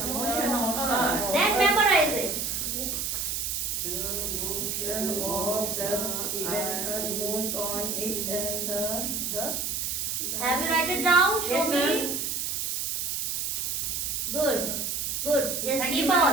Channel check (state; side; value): noise; right; hiss, 1 dB below the sound